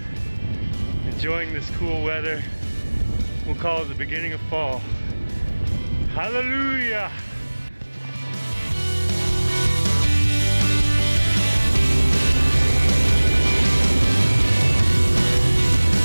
enjoying this cool weather. We'll call it the beginning of fall. Hallelujah!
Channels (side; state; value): both; inverted; correlation -1.00